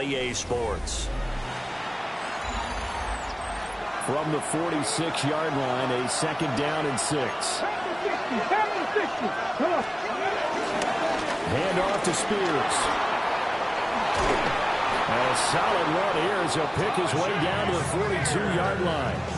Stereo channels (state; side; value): identical; both; correlation 1.00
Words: EA Sports. From the 46-yard line, a 2nd down and 6. Hand off to Spears. A solid run here as he'll pick his way down to the 42-yard line.